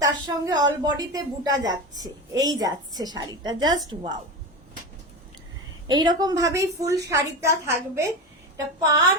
তার সঙ্গে অল বডিতে বুটা যাচ্ছে, এই যাচ্ছে শাড়িটা, জাস্ট ওয়াও। এইরকম ভাবেই ফুল শাড়িটা থাকবে, এটা পার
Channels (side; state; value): both; normal; correlation 0.22